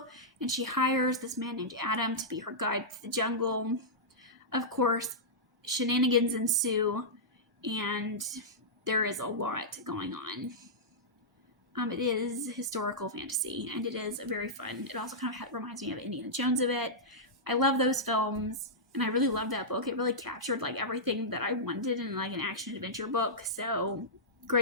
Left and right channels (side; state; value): both; normal; correlation -0.12